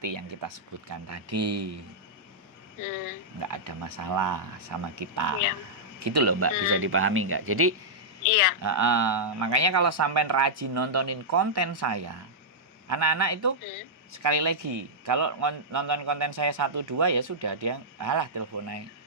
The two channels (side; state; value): both; normal; correlation -0.10